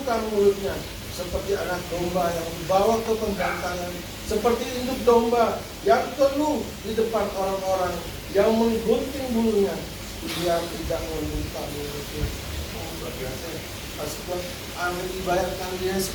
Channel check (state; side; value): identical; both; correlation 1.00